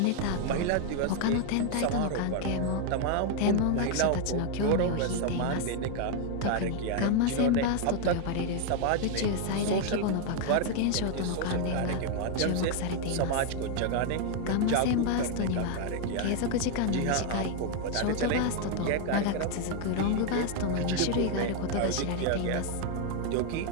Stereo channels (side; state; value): both; different; correlation 0.01